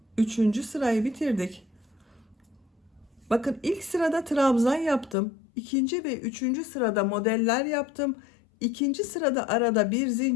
Üçüncü sırayı bitirdik. Bakın ilk sırada trabzan yaptım. İkinci ve üçüncü sırada modeller yaptım. İkinci sırada arada bir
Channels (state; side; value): drops out; right; at 5.2 s